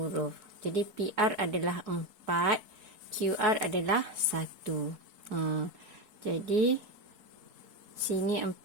Jadi, PR adalah 4. QR adalah 1. Jadi, sini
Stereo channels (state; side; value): late; left; 4.7 ms